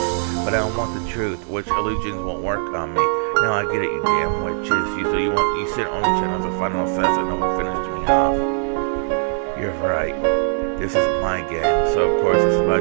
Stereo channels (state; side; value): silent; left; digital silence